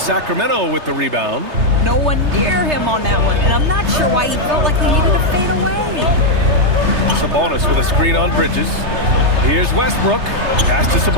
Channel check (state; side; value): late; left; 3.3 ms